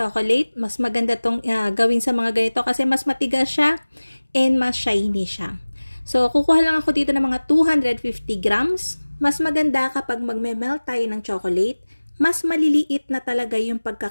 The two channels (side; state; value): both; inverted; correlation -1.00